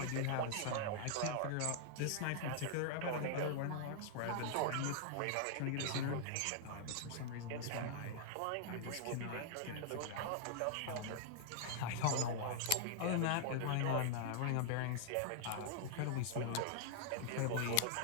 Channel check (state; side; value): different; both; correlation -0.01